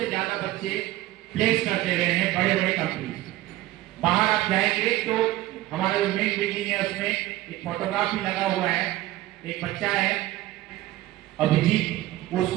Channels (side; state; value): left; quieter; 16.2 dB